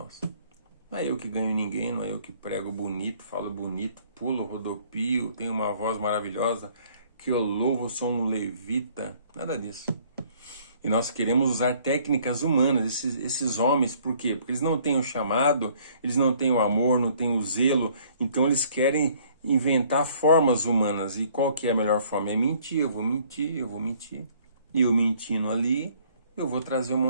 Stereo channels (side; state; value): both; inverted; correlation -0.60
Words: Não é eu que ganho ninguém, não é eu que prego bonito, falo bonito, pulo, rodopio, tenho uma voz maravilhosa, que eu louvo, sou um levita, nada disso. E nós queremos usar técnicas humanas, esses homens, por quê? Porque eles não têm o chamado, eles não têm o amor, não têm o zelo, então eles querem inventar formas humanas. E qual que é a melhor forma? É mentir, eu vou mentir. E eu mentindo ali, eu vou trazer um